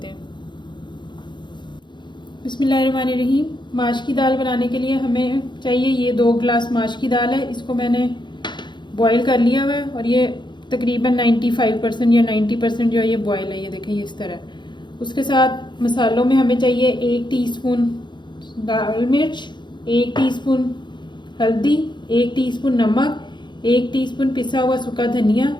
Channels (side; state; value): right; late; 0.22 ms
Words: हैं। बिस्मिल्लाहिर्रहमानिर्रहीम। माश की दाल बनाने के लिए हमें चाहिए ये 2 गिलास माश की दाल है। इसको मैंने बॉईल कर लिया हुआ है और ये तकरीबन 95% या 90% जो है ये बॉयल है। ये देखें ये इस तरह। उसके साथ मसालों में हमें चाहिए 1 टीस्पून लाल मिर्च, 1 टीस्पून हल्दी, 1 टीस्पून नमक, 1 टीस्पून पिसा हुआ सूखा धनिया,